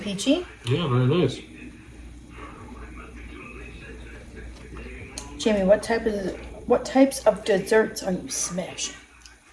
Yeah, very nice. Jamie, what types of desserts are you smashing?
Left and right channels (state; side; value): identical; both; correlation 1.00